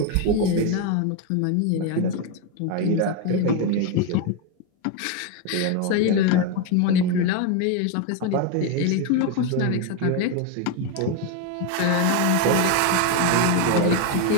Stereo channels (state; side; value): different; both; correlation 0.02